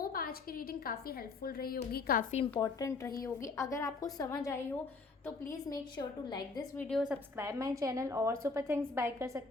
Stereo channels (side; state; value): right; quieter; 4.1 dB